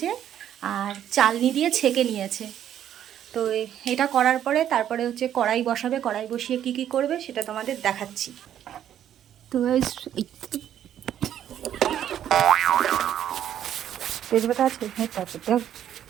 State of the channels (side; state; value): left; quieter; 10.5 dB